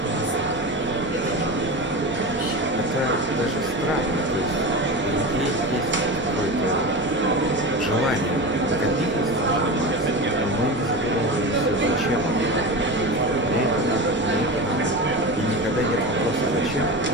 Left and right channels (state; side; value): normal; both; correlation 0.26